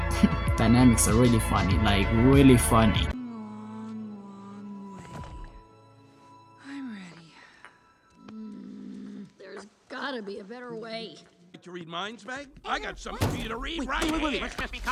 dynamics are really funny, like really funny. I'm ready. There's gotta be a better way. To read minds, Meg? I got something for you to read right here. Let's just be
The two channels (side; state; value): both; identical; correlation 1.00